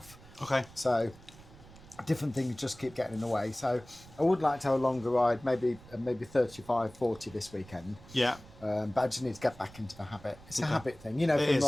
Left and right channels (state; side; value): noise; right; rumble, 21 dB below the sound